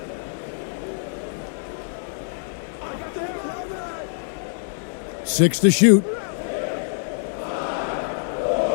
Six to shoot.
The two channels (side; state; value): right; silent; 55 dB below the other